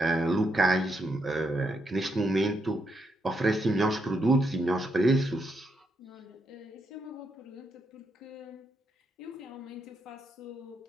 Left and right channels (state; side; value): normal; both; correlation 0.80